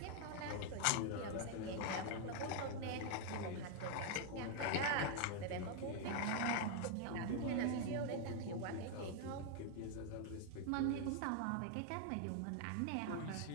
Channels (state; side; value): different; both; correlation 0.00